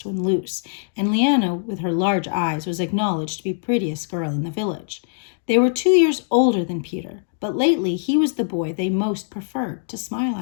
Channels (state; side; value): silent; right; digital silence